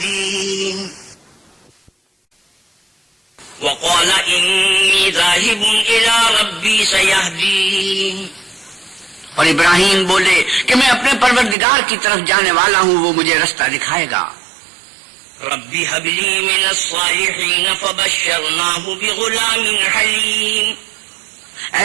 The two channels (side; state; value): left; drops out; at 11.6 s